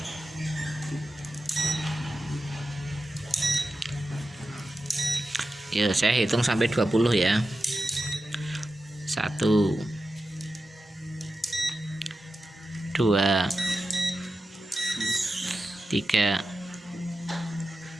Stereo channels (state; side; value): normal; both; correlation 0.91